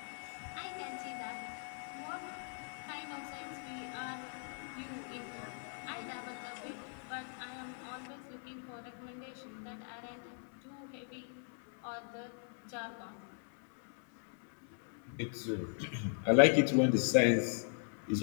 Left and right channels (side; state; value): right; silent; 52 dB below the other